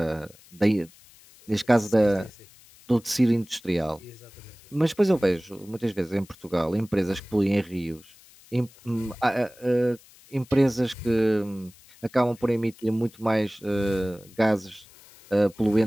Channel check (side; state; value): left; noise; hiss, 25 dB below the sound